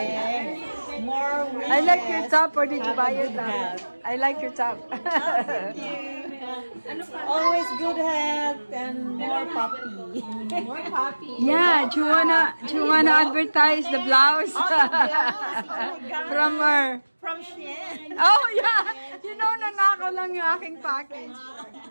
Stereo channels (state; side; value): inverted; both; correlation -1.00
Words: More wishes. I like your top, or did you buy your top? I like your top. Thank you. Always good health and more puppy. More puppy. Yeah, do you wanna advertise the blouse? From her. From Shein. Oh yeah, you know, nanakaw lang yung aking package.